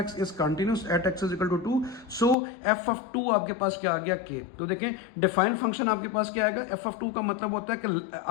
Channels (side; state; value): right; drops out; at 2.4 s